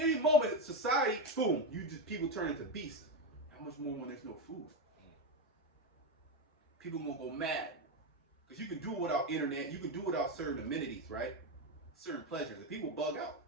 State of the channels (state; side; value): normal; both; correlation 0.11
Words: moment, society, boom, people turn into beasts. How much more when there's no food? People gonna go mad. Because you can do it without internet, you can do it without certain amenities, right? Certain pleasures, and people bug out.